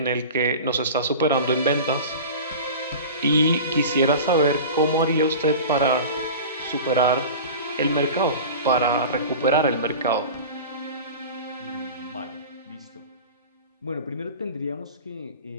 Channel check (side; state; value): both; inverted; correlation -0.34